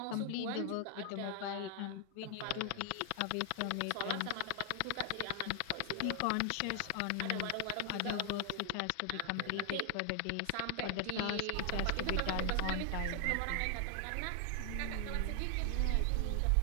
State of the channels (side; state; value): both; different; correlation 0.00